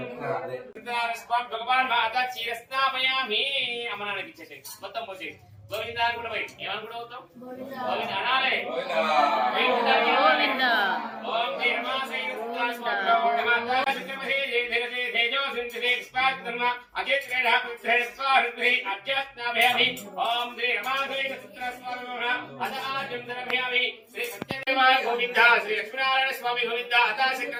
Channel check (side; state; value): both; identical; correlation 1.00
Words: స్వామి భగవాన్ మాత క్షీరస్నామయామి అమ్మనానికి ఇచ్చేసి మొత్తం పోసి గోవింద కూడా పోయి ఏమనుకుంటూ అవుతాం గోవింద అనాలే. ఓం శ్రీ రమాసై